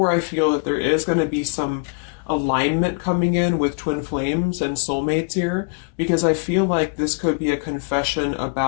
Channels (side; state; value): right; quieter; 37.8 dB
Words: I feel that there is going to be some alignment coming in with twin flames and soulmates here, because I feel like this could be a confession